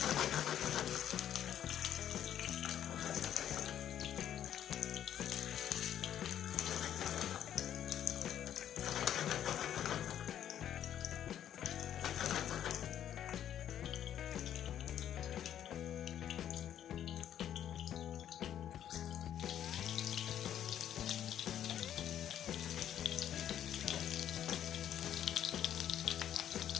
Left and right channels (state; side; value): quieter; right; 10.4 dB